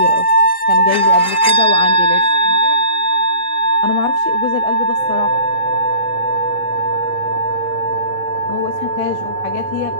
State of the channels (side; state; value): right; late; 3.8 ms